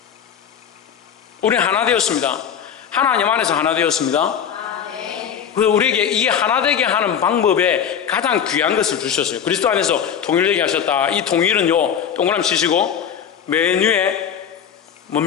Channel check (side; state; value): right; quieter; 8.3 dB